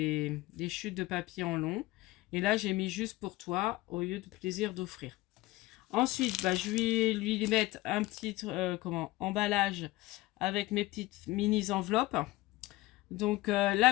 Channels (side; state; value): right; quieter; 19.2 dB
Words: chutes de papier en long. Et là, j'ai mis juste pour toi, au lieu de plaisir d'offrir. Ensuite, bah, je vais lui mettre un petit emballage avec mes petites mini enveloppes. Donc là,